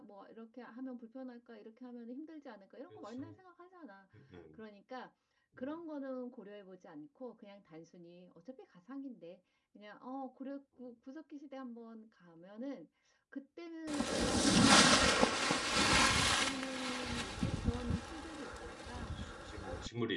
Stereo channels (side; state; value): both; identical; correlation 1.00